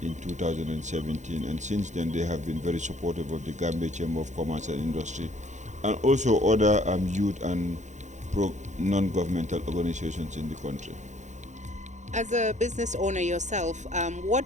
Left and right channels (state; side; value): late; left; 0.35 ms